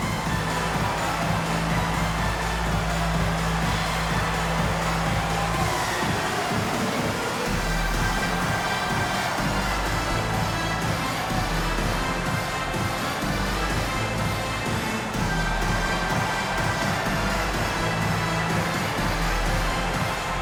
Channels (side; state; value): both; identical; correlation 1.00